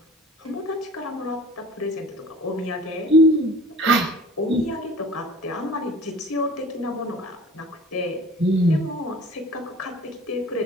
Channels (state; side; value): normal; both; correlation 0.44